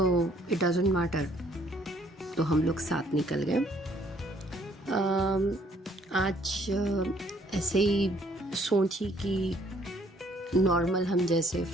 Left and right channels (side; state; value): both; normal; correlation 0.63